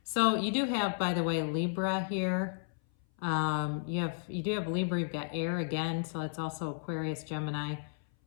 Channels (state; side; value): silent; right; 56 dB below the other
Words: So you do have, by the way, Libra here. You do have Libra. You've got air again, so it's also Aquarius, Gemini.